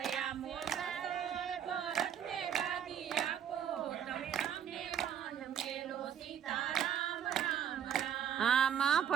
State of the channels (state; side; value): quieter; left; 9.0 dB